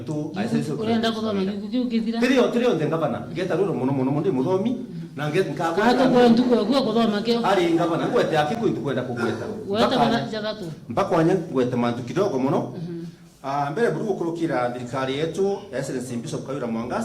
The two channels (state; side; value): identical; both; correlation 1.00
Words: urenda kuthoma gukithira trio ndengabana ngeta ruro muno ndi muthomi na ngeta nkako kato kwa nduko gwa kuthoma kio ari ngabana ngwete yake kwitu kwenda kugweta weta bana jagatu mpaka wanya ngwete mantu kidogo muno mbere buru kurukira thirikari yetu Excellency Bishop Kayura